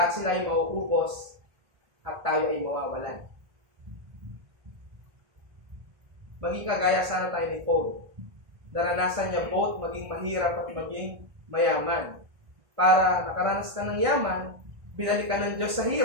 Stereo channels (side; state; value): left; late; 1.6 ms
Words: sila ay mauubos at tayo ay mawawalan. Maging kagaya sana tayo ni Paul. Naranasan niya both maging mahirap at maging mayaman. Para nakaranas ka ng yaman, binalik ka ng Diyos sa